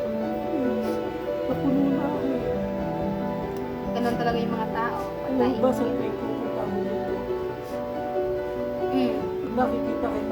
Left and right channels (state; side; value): identical; both; correlation 1.00